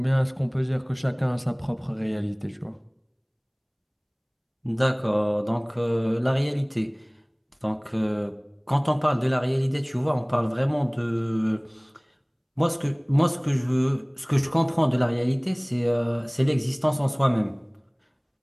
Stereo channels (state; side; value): identical; both; correlation 1.00